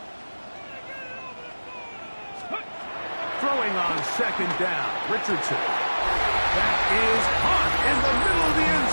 Throwing on 2nd down, Richardson. That is caught in the middle of the end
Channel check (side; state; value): both; inverted; correlation -1.00